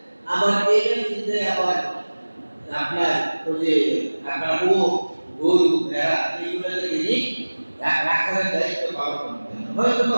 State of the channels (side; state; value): both; inverted; correlation -1.00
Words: আবার এটা কিনতে আবার আপনার ওই যে আপনার গরু ভেড়া এইগুলোকে তিনি রাখার দায়িত্ব পালন করতেন। হয়তো বা